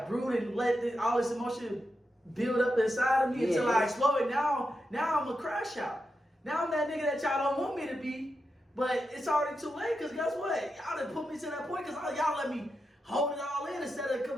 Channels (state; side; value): normal; both; correlation 0.87